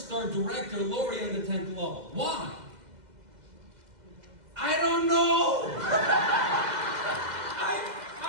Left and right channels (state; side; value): late; left; 2.0 ms